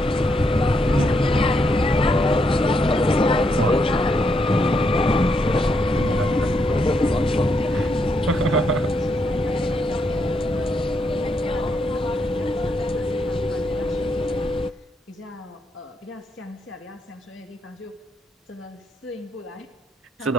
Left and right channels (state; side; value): normal; both; correlation 0.78